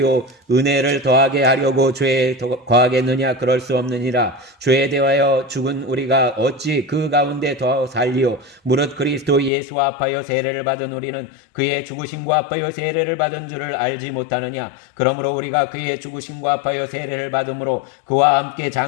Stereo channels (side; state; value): right; drops out; at 9.5 s